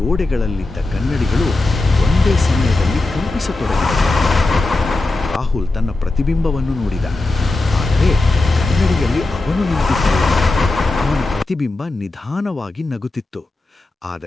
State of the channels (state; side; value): quieter; right; 3.1 dB